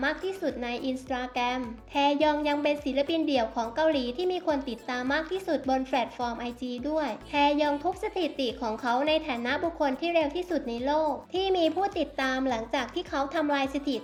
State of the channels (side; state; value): both; identical; correlation 1.00